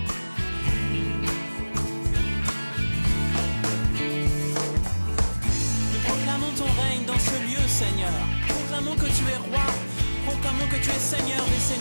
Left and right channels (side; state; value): both; inverted; correlation -1.00